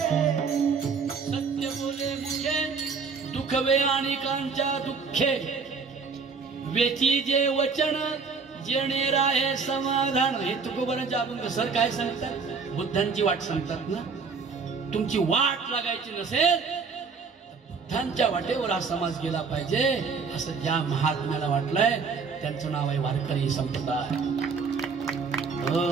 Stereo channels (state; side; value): quieter; left; 5.2 dB